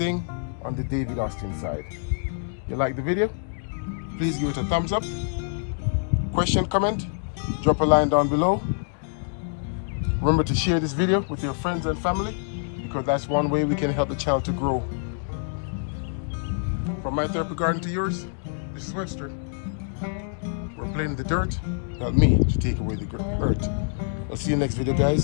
on the David Austin side. You like the video? Please give it a thumbs up. Question, comment, drop a line down below. Remember to share this video with your friends and family, because that's one way we can help the channel to grow. From my therapy garden to yours, this is Webster. We're playing the dirt, not me, to take away the hurt. I'll see you next video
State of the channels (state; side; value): silent; right; 61 dB below the other